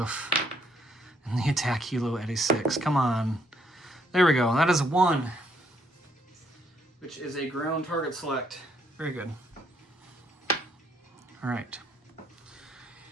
And the attack helo at a 6. Come on. There we go. That is a 1. Which is a ground target select. Very good. All right.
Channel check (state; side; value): normal; both; correlation 0.70